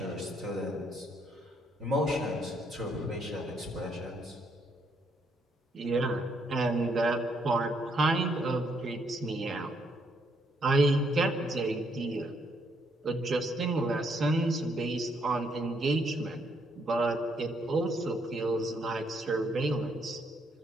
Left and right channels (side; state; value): both; normal; correlation 0.72